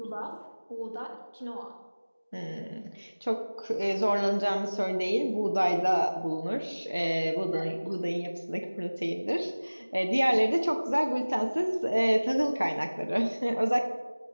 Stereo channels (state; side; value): inverted; both; correlation -1.00